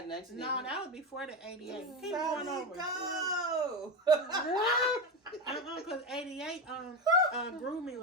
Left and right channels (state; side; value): normal; both; correlation 0.17